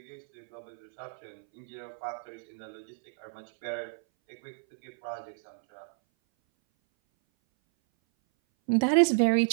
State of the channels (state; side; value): silent; left; 57 dB below the other